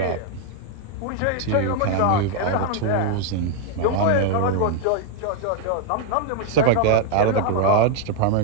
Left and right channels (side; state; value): both; different; correlation 0.00